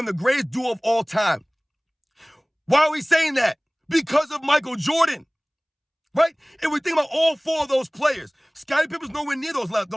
the greatest duo of all time, why are we saying that? Because of Michael Jordan, right? If we think about all 4 of those players, Scottie Pippen's nowhere near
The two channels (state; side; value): identical; both; correlation 1.00